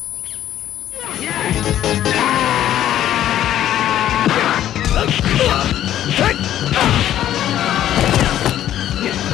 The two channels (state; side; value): quieter; right; 11.9 dB